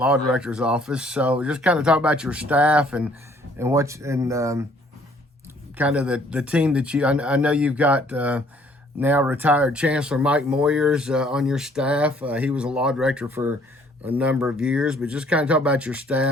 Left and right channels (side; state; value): both; normal; correlation 0.60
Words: director's office. So just kind of talk about your staff and kind of the team that I know you've got now retired Chancellor Mike Moyers on your staff. He was a law director for a number of years, but just kind of talk about your